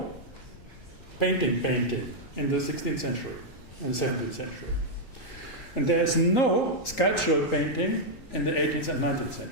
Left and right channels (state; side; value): late; right; 3.9 ms